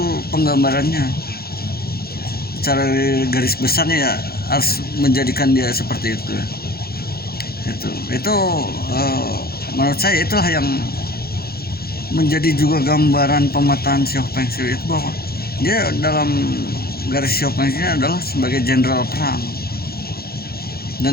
penggambarannya secara garis besarnya ya harus menjadikan dia seperti itu. Itu menurut saya itulah yang menjadi juga gambaran pemetaan sioh Feng Shui itu, bahwa dia dalam garis sioh Feng Shui adalah sebagai jenderal perang.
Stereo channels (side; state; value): right; late; 0.45 ms